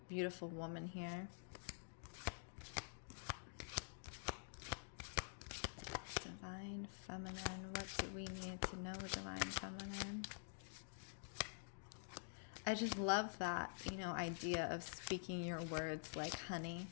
beautiful woman here. Divine feminine. What do we need to know, divine feminine? I just love that, idea of speaking your words like honey.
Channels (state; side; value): silent; right; digital silence